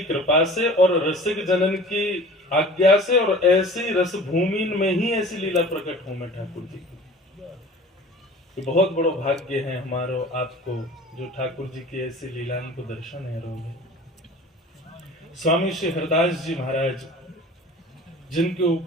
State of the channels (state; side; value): normal; both; correlation 0.43